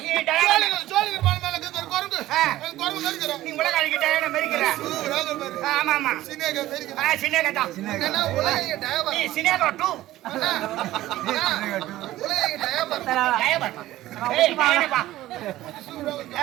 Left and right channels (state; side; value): quieter; left; 15.4 dB